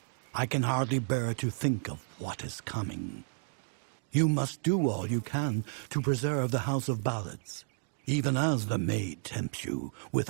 I can hardly bear to think of what is coming. You must do all you can to preserve the House of Ballads, even as the maid tempts you with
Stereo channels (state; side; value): silent; left; digital silence